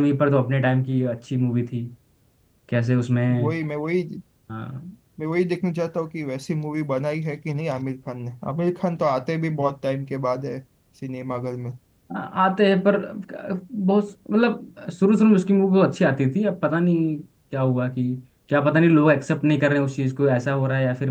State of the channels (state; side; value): identical; both; correlation 1.00